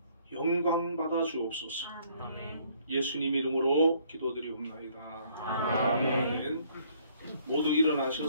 영광 받아 주옵소서. 아멘. 예수님 이름으로 기도드리옵나이다. 아멘. 모두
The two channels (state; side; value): inverted; both; correlation -0.63